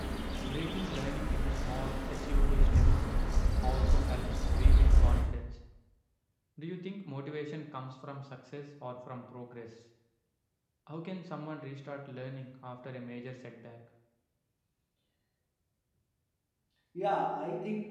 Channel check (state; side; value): identical; both; correlation 1.00